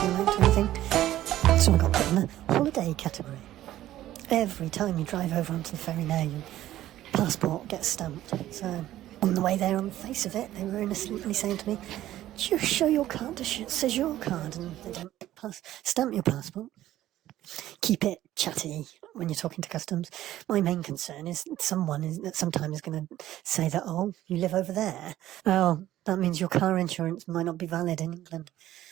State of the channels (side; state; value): left; quieter; 13.8 dB